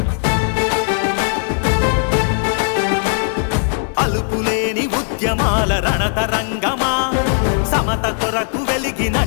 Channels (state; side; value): silent; right; 62 dB below the other